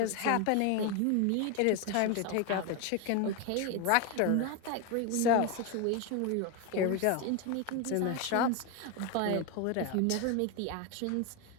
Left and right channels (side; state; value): both; different; correlation 0.01